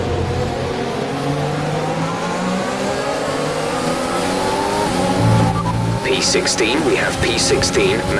P16, we have P16,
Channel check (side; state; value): both; identical; correlation 1.00